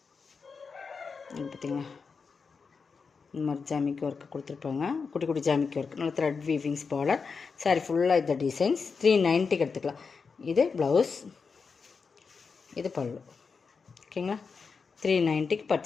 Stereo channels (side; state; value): right; quieter; 5.2 dB